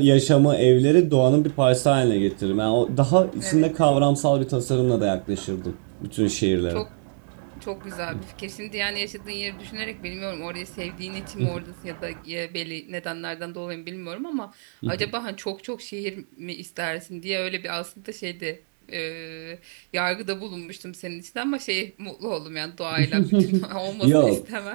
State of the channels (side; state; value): left; silent; digital silence